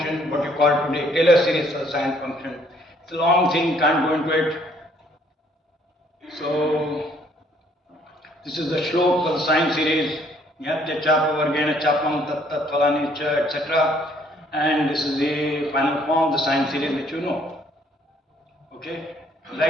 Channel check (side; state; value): both; normal; correlation 0.64